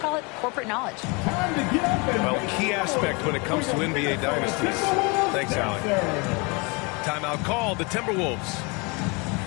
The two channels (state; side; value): quieter; right; 29.3 dB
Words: it corporate knowledge. Well, key aspect when it comes to NBA dynasties. Thanks, Allie. Timeout called, the Timberwolves.